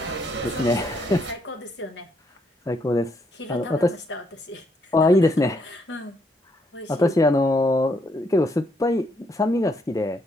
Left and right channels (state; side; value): normal; both; correlation 0.74